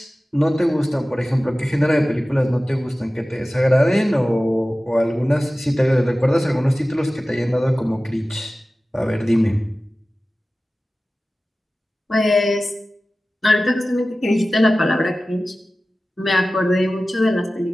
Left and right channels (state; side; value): normal; both; correlation 0.96